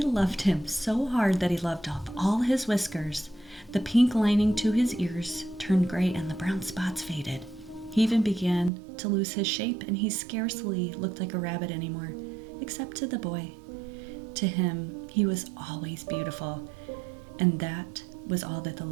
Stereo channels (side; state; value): left; drops out; at 8.7 s